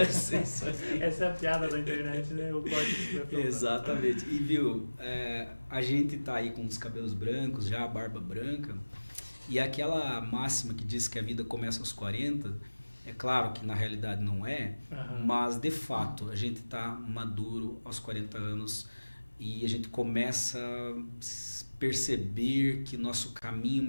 essa é a piada da internet, né? O córtex Exatamente. E viu, a gente tá aí com os cabelos brancos, já a barba branca, e aquela máxima que diz que a vida começa aos 40, é claro que na realidade não é, mas de fato a gente tá maduro aos 40 anos e a gente começa a perceber que nosso caminho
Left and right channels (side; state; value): both; inverted; correlation -1.00